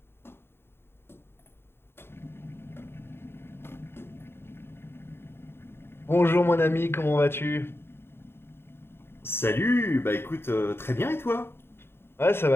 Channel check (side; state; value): right; late; 0.11 ms